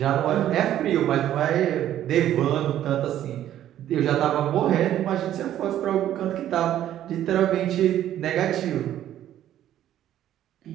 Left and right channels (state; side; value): quieter; left; 11.8 dB